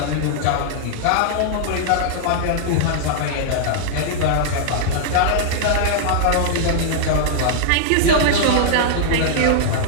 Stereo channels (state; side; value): different; both; correlation -0.01